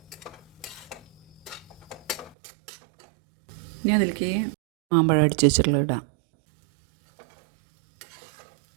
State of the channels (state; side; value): drops out; left; at 2.4 s